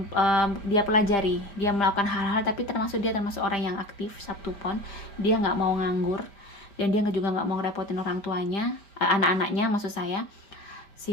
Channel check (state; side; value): late; right; 5.0 ms